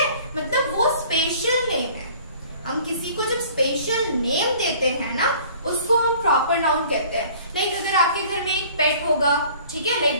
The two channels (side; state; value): both; inverted; correlation -0.51